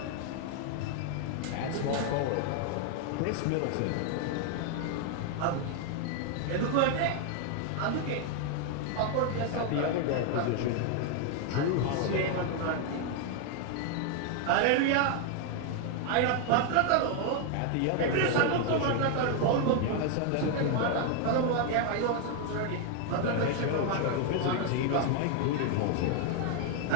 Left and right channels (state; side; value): different; both; correlation 0.00